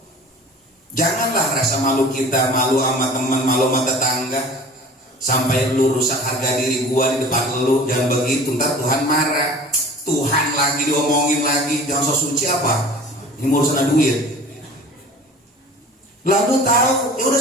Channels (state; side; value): normal; both; correlation 0.43